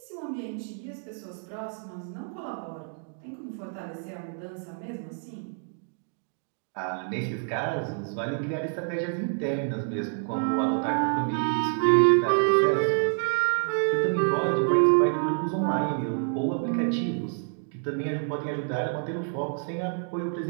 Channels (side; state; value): left; silent; 59 dB below the other